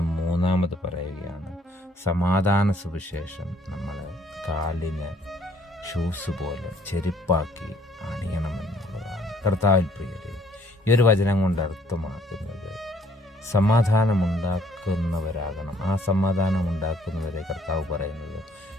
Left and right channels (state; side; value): normal; both; correlation 0.63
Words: 3-ാമത് പറയുകയാണ്, സമാധാന സുവിശേഷം നമ്മൾ കാലിന് ഷൂസ് പോലെ ചെരുപ്പാക്കി അണിയണമെന്നുള്ളതാണ്. കർത്താവിൽ പ്രിയരെ, ഈ ഒരു വചനം കൊണ്ട് അർത്ഥമാക്കുന്നത് സമാധാനമുണ്ടാക്കുന്നവരാകണം. ആ സമാധാനമുണ്ടാക്കുന്നവരെ കർത്താവ് പറയുന്നത്